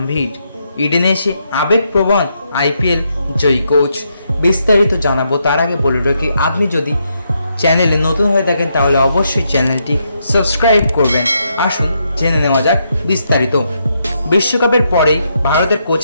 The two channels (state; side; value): inverted; both; correlation -0.79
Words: ইডেনে এসে আবেগপ্রবণ আইপিএল জয়ী কোচ। বিস্তারিত জানাবো তার আগে বলে রাখি, আপনি যদি চ্যানেলে নতুন হয়ে থাকেন তাহলে অবশ্যই চ্যানেলটি সাবস্ক্রাইব করবেন। আসুন জেনে নেওয়া যাক বিস্তারিত। বিশ্বকাপের পরেই ভারতের